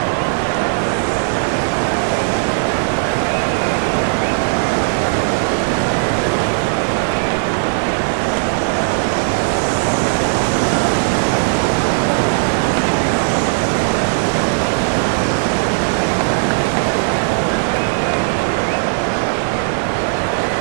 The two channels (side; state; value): left; silent; 68 dB below the other